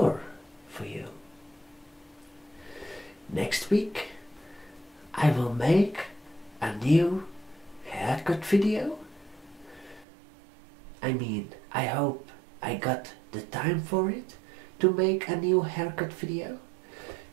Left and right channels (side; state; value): left; drops out; at 10.1 s